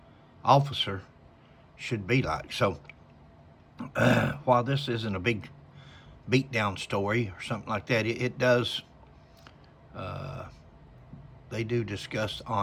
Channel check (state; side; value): identical; both; correlation 1.00